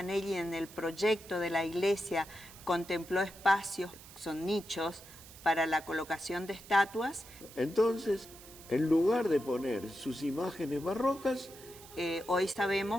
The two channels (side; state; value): right; noise; hiss, 18 dB below the sound